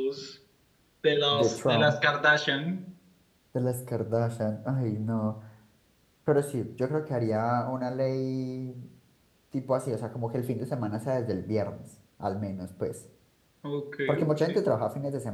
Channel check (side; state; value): both; identical; correlation 1.00